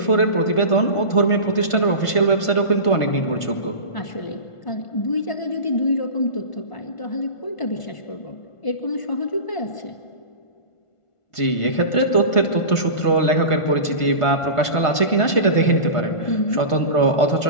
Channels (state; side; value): late; right; 1.5 ms